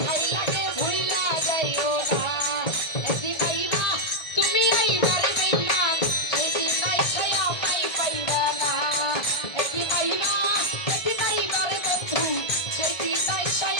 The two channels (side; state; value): right; late; 1.7 ms